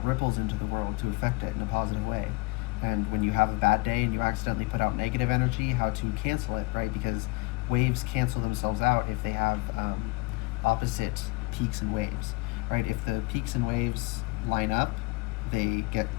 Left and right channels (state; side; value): quieter; right; 24.2 dB